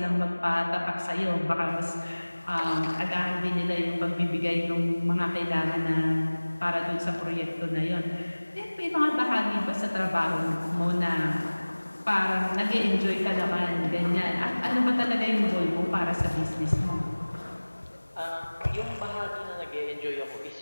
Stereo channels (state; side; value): inverted; both; correlation -1.00